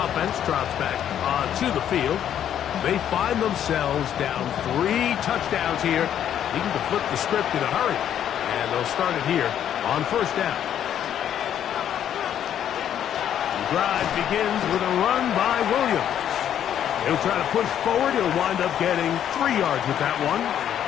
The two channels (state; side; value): quieter; right; 10.0 dB